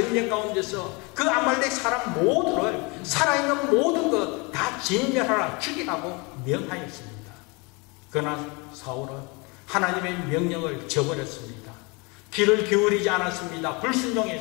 가운데서 그 아말렉 사람 모두를, 살아있는 모든 것 다 진멸하라, 죽이라고 명하였습니다. 그러나 사울은 하나님의 명령을 저버렸습니다. 귀를 기울이지 않았습니다.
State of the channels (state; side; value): quieter; right; 28.5 dB